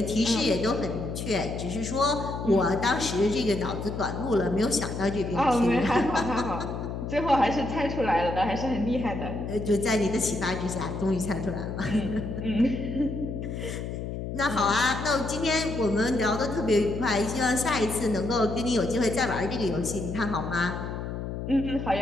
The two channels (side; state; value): left; noise; hum, 5 dB below the sound